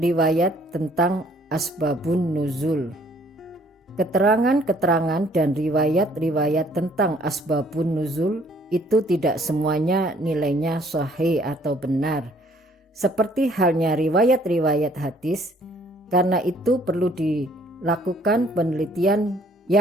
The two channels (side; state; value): both; normal; correlation 0.61